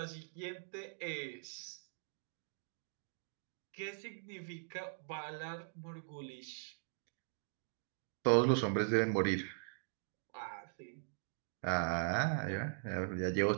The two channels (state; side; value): silent; left; digital silence